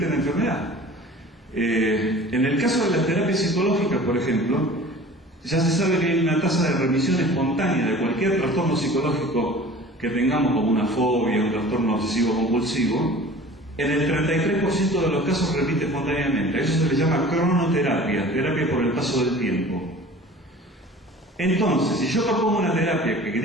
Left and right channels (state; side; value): normal; both; correlation 0.43